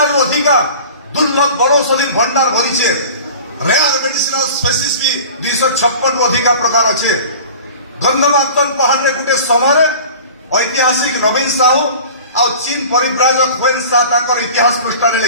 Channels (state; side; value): inverted; both; correlation -0.40